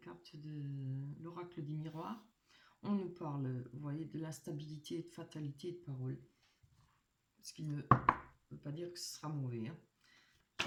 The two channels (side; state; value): both; identical; correlation 1.00